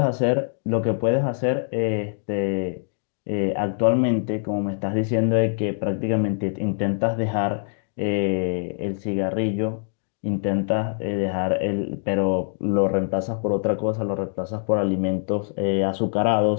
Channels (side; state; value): right; silent; digital silence